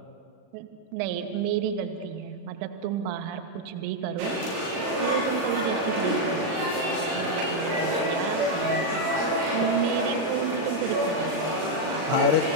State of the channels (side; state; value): left; late; 38 ms